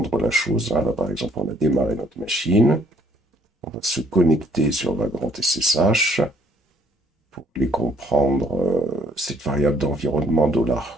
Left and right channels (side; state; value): both; normal; correlation 0.63